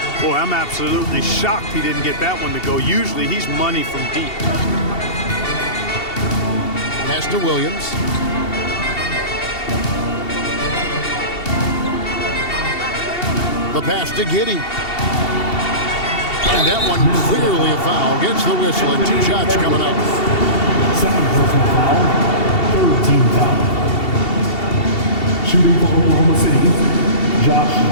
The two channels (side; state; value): right; late; 2.7 ms